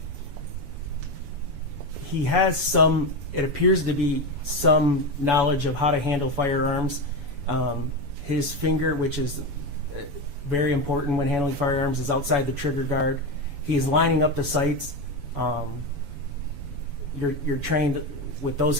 has some, it appears to be some knowledge of how to handle firearms. His finger, which is very important when handling firearms, is outside the trigger guard. He is lining up the sights. You're trained with those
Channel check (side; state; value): left; late; 7.0 ms